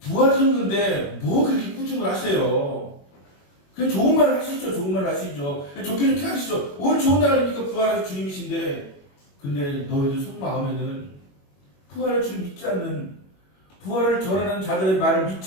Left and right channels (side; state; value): right; late; 21 ms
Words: 뭐 그렇게 꾸중을 하세요? 그냥 좋은 말 하시죠. 좋은 말 하시죠. 좋게 하시죠. 오늘 좋은 날 아닙니까? 부활하신 주님이신데 근데 너희들 속마음에는 부활을 주님 믿지 않는 부활을 전하는 자들의 말을